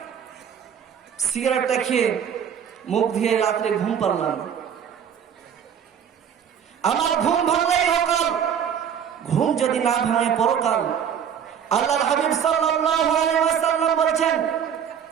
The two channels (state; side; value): quieter; left; 8.3 dB